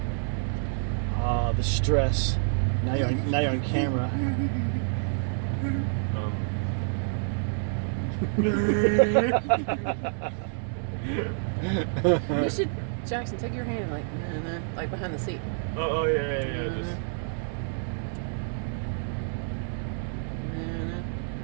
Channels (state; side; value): silent; left; digital silence